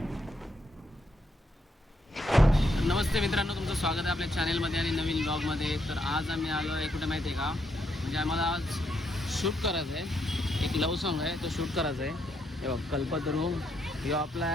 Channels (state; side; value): normal; both; correlation 0.77